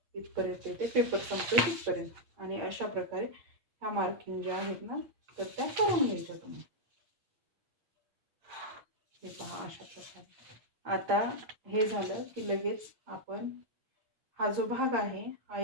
इथपर्यंत येते, पेपर संपतोय तिथपर्यंत. आणि अशा प्रकारे ह्या मार्किंग ज्या आहेत ना तर त्या करून घ्यायच्या तुम्ही. हे पहा, अशा प्रकारे. आता हे झालं की लगेच आपण हा जो भाग आहे हा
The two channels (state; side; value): late; left; 8.6 ms